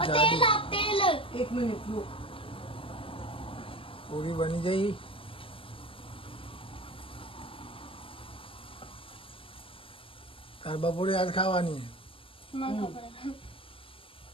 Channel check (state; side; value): late; right; 0.26 ms